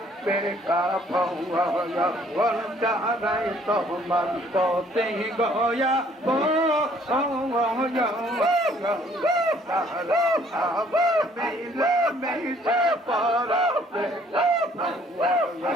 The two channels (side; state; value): both; normal; correlation 0.61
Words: বেকা ভগন তাহারাই তোমার অতি গয়া তাহারা আবার মিলে মিশে পড়া বেকা